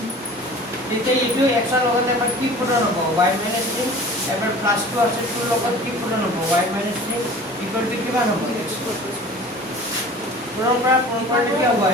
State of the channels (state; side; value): normal; both; correlation 0.42